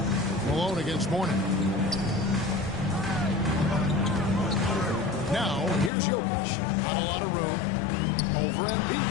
Malone against Mourning. Now, here's Jokic. Not a lot of room. Over Embiid.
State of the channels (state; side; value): drops out; right; at 5.9 s